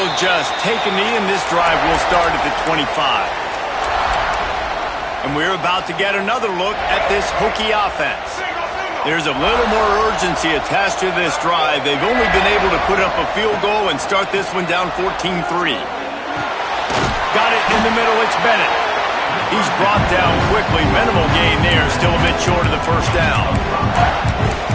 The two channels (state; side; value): identical; both; correlation 1.00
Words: just take a knee, and this drive will start at the 25. And we're about to get another look at this Hokie offense. There's a little more urgency attached to this drive. They've only been able to put up a field goal and start this one down 14-3. Got it in the middle, it's Bennett. He's brought down quickly. Minimal gain there, still a bit short of the first down.